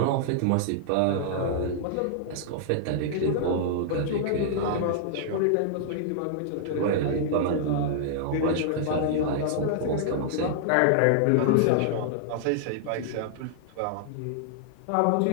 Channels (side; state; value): both; different; correlation -0.01